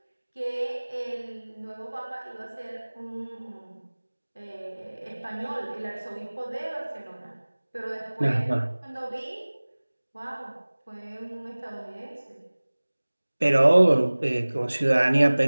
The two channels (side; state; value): both; inverted; correlation -1.00